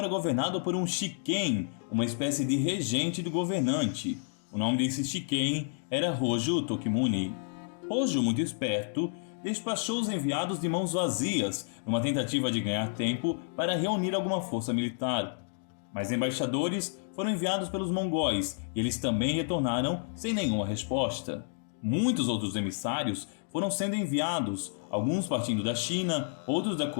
governado por um shiken, uma espécie de regente do governante. O nome desse shiken era Hojo Tokimune. Hojo, muito esperto, despachou os enviados de mãos vazias, numa tentativa de ganhar tempo para reunir alguma força militar. Mas embaixadores foram enviados pelos mongóis e eles também retornaram sem nenhuma resposta. Muitos outros emissários foram sendo enviados, alguns partindo da China, outros da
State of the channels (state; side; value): silent; right; digital silence